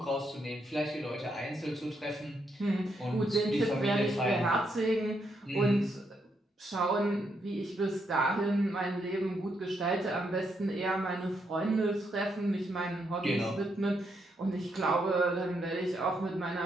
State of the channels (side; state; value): both; normal; correlation 0.78